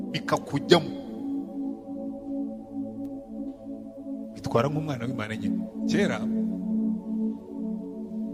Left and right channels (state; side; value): identical; both; correlation 1.00